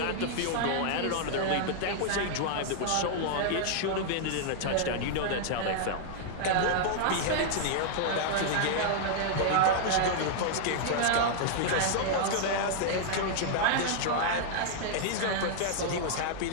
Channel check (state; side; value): different; both; correlation -0.01